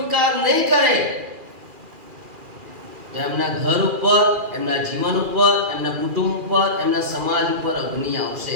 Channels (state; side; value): late; left; 2.4 ms